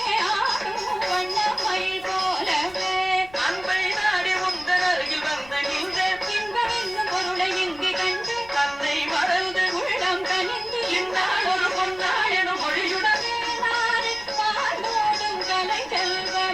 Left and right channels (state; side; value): noise; left; rumble, 23 dB below the sound